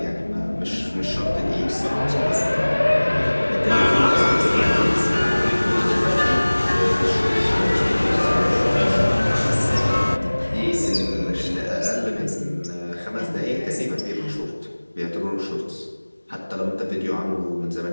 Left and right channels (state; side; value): inverted; both; correlation -1.00